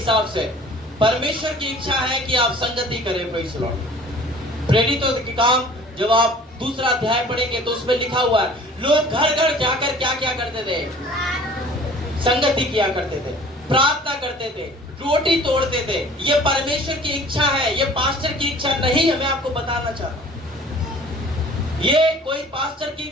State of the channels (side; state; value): both; normal; correlation 0.48